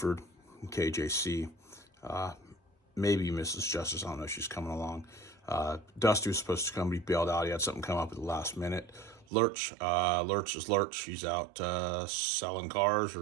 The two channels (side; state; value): left; drops out; at 9.2 s